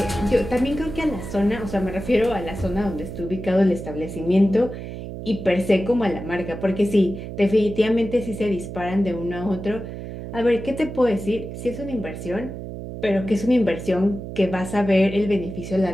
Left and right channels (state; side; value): noise; right; hum, 9 dB below the sound